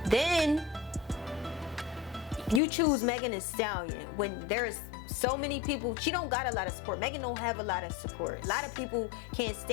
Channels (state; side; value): drops out; right; at 2.6 s